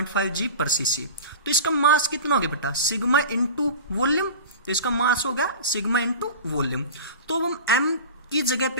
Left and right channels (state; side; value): inverted; both; correlation -0.34